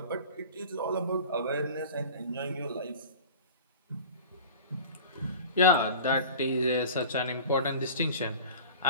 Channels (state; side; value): inverted; both; correlation -0.38